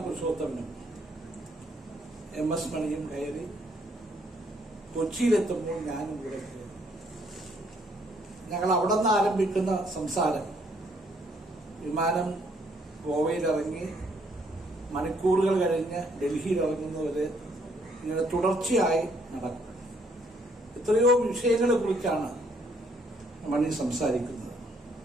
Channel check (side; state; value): both; normal; correlation 0.68